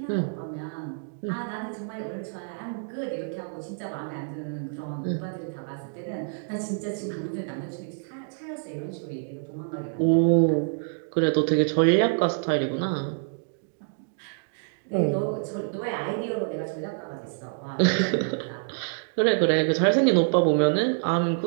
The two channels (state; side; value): silent; left; digital silence